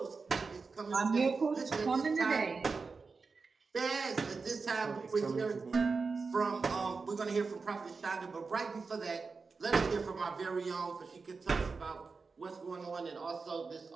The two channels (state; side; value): quieter; left; 4.5 dB